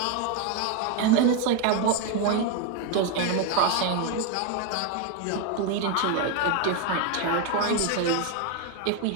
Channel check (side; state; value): both; different; correlation 0.02